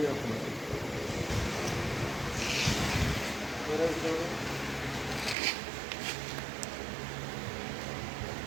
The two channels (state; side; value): drops out; left; at 5.4 s